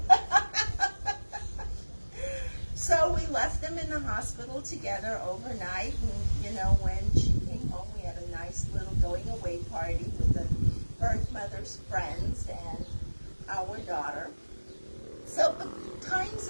So we left them in the hospital together overnight, and when she came home, we had a nice little going away party with the birth mother's friends and our daughter. So the times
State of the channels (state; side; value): inverted; both; correlation -1.00